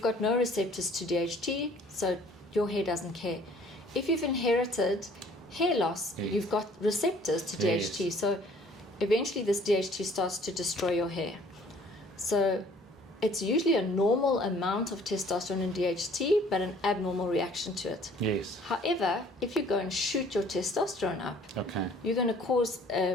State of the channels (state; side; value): normal; both; correlation 0.56